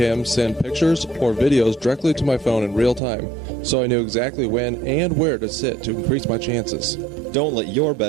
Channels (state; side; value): drops out; left; at 3.0 s